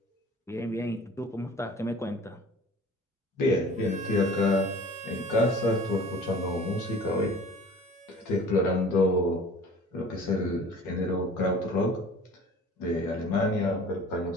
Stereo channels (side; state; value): both; normal; correlation 0.45